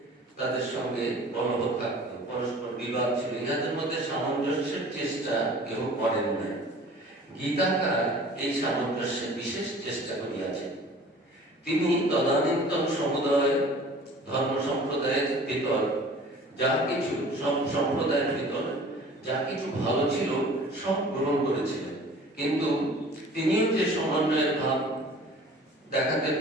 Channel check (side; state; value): both; normal; correlation 0.46